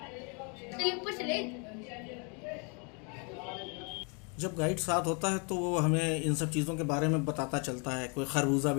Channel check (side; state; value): right; quieter; 35.0 dB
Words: जब गाइड साथ होता है तो वो हमें इन सब चीज़ों के बारे में बताता चलता है। कोई खरबूजा